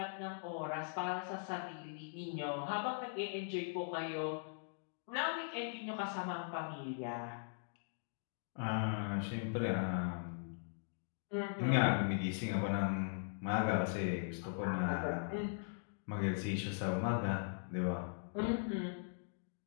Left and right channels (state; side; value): silent; right; digital silence